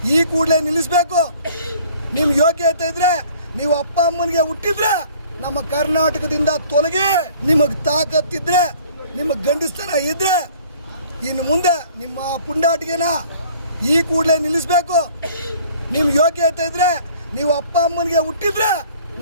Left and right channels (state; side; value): inverted; both; correlation -0.53